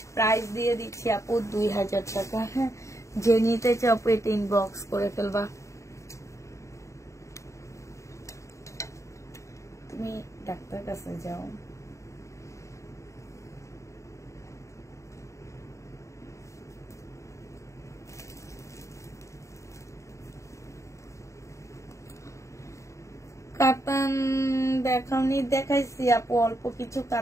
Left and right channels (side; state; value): right; late; 0.15 ms